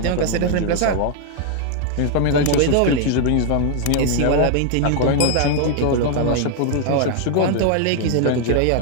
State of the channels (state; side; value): different; both; correlation 0.00